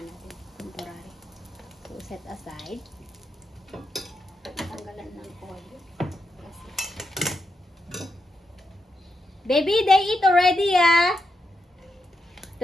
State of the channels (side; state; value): both; normal; correlation 0.84